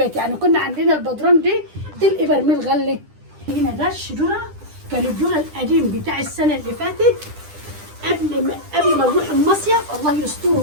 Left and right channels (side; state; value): left; late; 10 ms